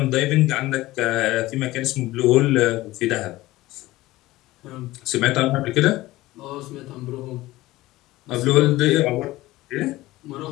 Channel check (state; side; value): quieter; right; 17.9 dB